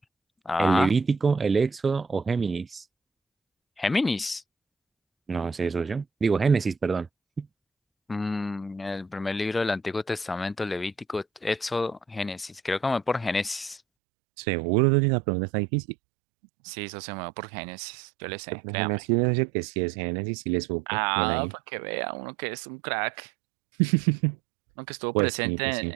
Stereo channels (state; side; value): drops out; left; at 13.8 s